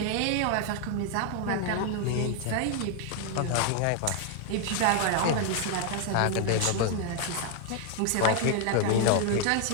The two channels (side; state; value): both; different; correlation 0.00